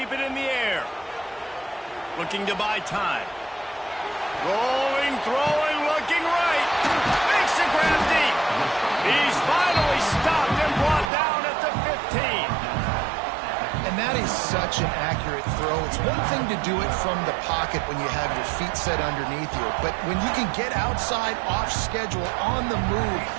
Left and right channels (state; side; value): drops out; left; at 11.1 s